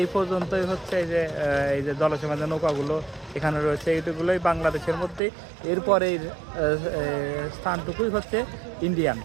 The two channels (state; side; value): drops out; left; at 5.2 s